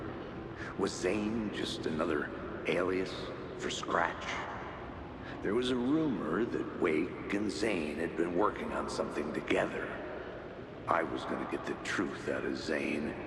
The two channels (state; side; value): identical; both; correlation 1.00